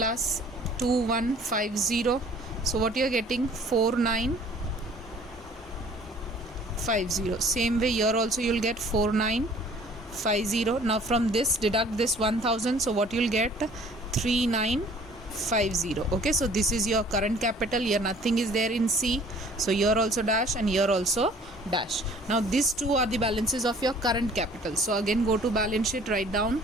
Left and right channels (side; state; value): both; normal; correlation 0.53